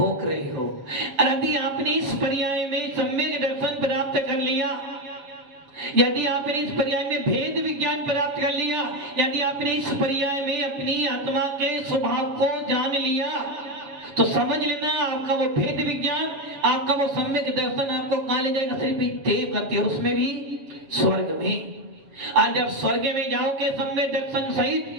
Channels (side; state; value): left; late; 7.3 ms